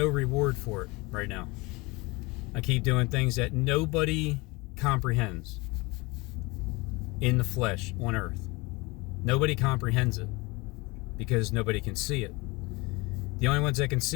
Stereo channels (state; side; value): quieter; right; 24.8 dB